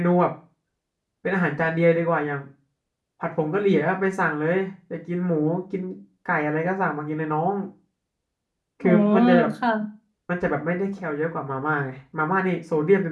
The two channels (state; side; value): identical; both; correlation 1.00